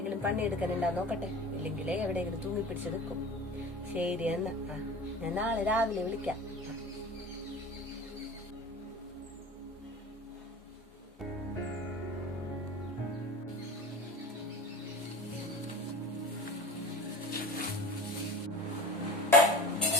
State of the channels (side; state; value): both; normal; correlation 0.36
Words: പണിയെടുക്കാനുണ്ടാ നോക്കട്ടെ. ഇല്ലെങ്കിലേ എവിടെയെങ്കിലും തൂങ്ങിപ്പിടിച്ച് നിൽക്കും. ശരി എന്നാ. ആ ഞാൻ നാളെ രാവിലെ വിളിക്കാം.